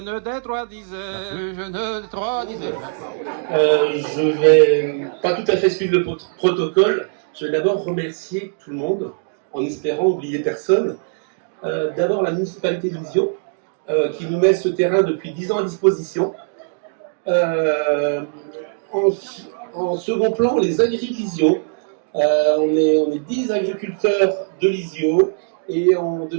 des trois disait, la plus jeune des trois disait. Je vais pas tout à fait suivre le protocole. Je vais d'abord remercier tout le monde, en espérant oublier personne. D'abord la municipalité de Lisieux, qui nous met ce terrain depuis 10 ans à disposition. En second plan, les agriculteurs Lisieux. On est 10 agriculteurs de Lisieux et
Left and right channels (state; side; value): silent; left; digital silence